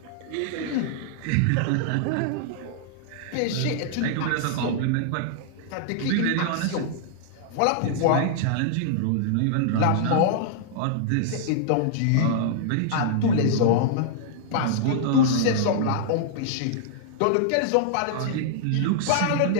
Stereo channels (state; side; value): different; both; correlation -0.01